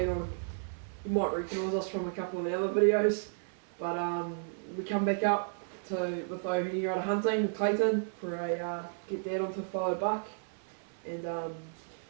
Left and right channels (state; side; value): silent; left; digital silence